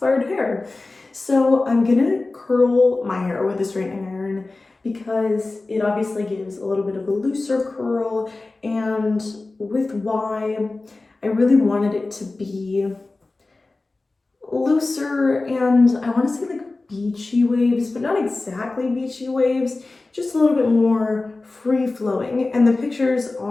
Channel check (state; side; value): quieter; right; 3.3 dB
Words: hair. So I'm gonna curl my hair with a straightening iron because it obviously gives a little bit of a looser curl, and with Y, I really wanted it to be looser, and I want to say like beachy waves, but not exactly beachy waves, just a little bit more free-flowing. And the pictures